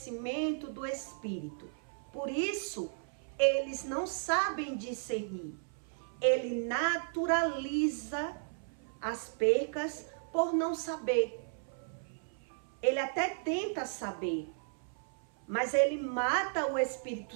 do Espírito. Por isso, eles não sabem discernir. Ele naturaliza as percas por não saber. Ele até tenta saber, mas ele mata o Espírito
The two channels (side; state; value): left; silent; 55 dB below the other